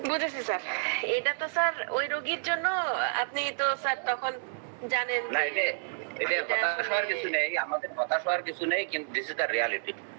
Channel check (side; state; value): left; silent; digital silence